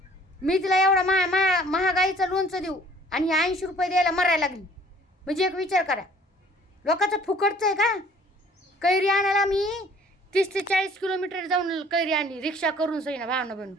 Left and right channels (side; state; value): both; normal; correlation 0.54